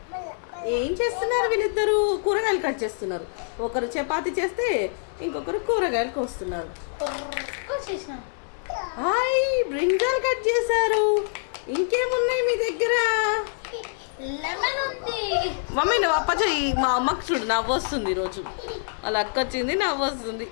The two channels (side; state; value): right; silent; 59 dB below the other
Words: ఏం చేస్తున్నారు వీళ్ళిద్దరు? కూరగాయలు కట్ చేస్తున్నారు. ఒకరు చపాతి చేస్తే ఇంకొకరు కూరగాయలు కోస్తున్నారు. హాయ్, బ్రింజాల్ కట్ చేశారు. ఇంకేమున్నాయి మీ దగ్గర? మమ్మీ నువ్వు అప్ప చెయ్యి. మా అమ్మకు చూడు నవ్వు వస్తుంది ఈరోజు. వాళ్ళ అక్క వచ్చింది, నవ్వు వస్తుంది.